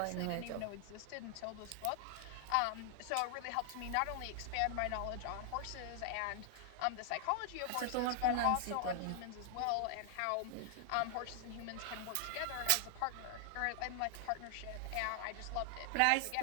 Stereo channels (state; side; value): different; both; correlation 0.00